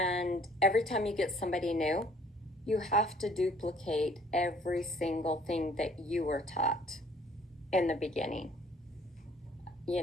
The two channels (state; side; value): normal; both; correlation 0.58